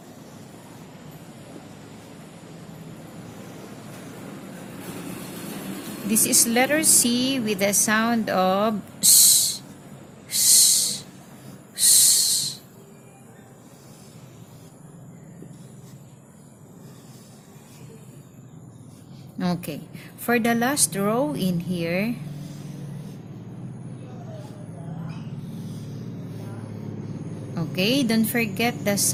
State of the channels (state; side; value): identical; both; correlation 1.00